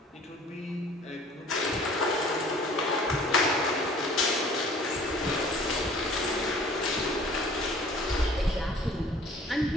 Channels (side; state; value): both; normal; correlation 0.51